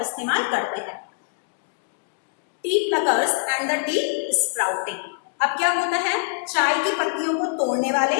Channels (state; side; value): silent; right; digital silence